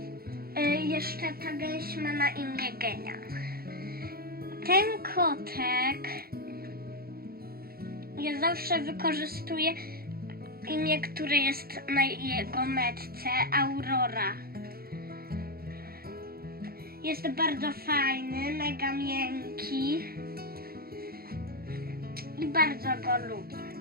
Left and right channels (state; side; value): late; left; 0.44 ms